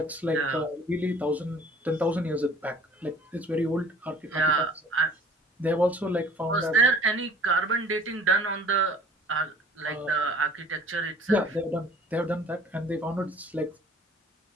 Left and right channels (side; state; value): both; normal; correlation 0.50